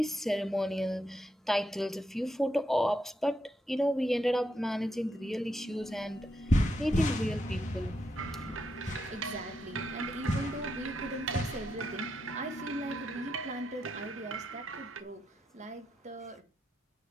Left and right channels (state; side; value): normal; both; correlation 0.82